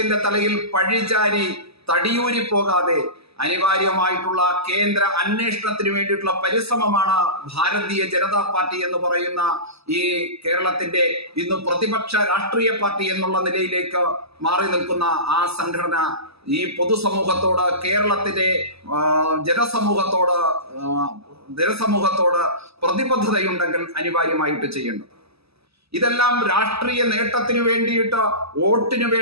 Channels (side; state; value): left; late; 0.78 ms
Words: തലയിൽ പഴിചാരി തടിയൂരി പോകാതെ അനിവാര്യമായിട്ടുള്ള കേന്ദ്ര അന്വേഷണത്തിന് വേണ്ടിയിട്ടുള്ള പരിശ്രമമാണ് ഭാരതീയ ജനതാ പാർട്ടി എന്ന് പറയുന്ന ഈ കേരളത്തിന്റെ ഇന്ന് പ്രതിപക്ഷ രാഷ്ട്രീയ പാർട്ടി എന്നുള്ള നിലയിലേക്ക് മാറി നിൽക്കുന്ന ആ സംഘടന ഈ പൊതുസമൂഹത്തോട്, കേരളത്തിന്റെ ജനസമൂഹത്തോട് പ്രതിബദ്ധതയുണ്ടെങ്കിൽ അനിവാര്യമായിട്ട് ചെയ്യേണ്ടത്. ഇതെല്ലാം രാഷ്ട്രീയ നേട്ടത്തിന് വേണ്ടിയിട്ട്, വോട്ടിന്